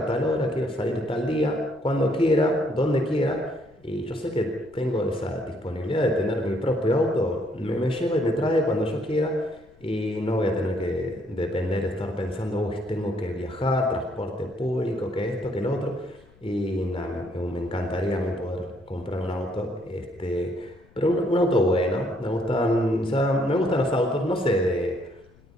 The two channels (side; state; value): left; noise; rumble, 28 dB below the sound